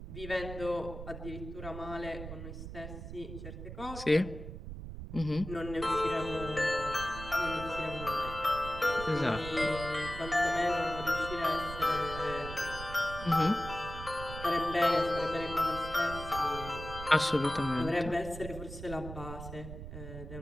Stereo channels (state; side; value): noise; right; rumble, 10 dB below the sound